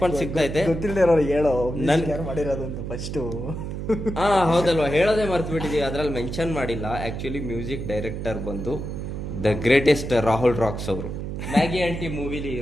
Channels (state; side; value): noise; right; hum, 5 dB below the sound